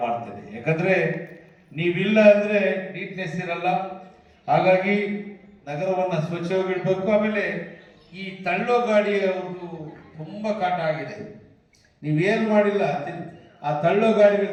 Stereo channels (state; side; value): identical; both; correlation 1.00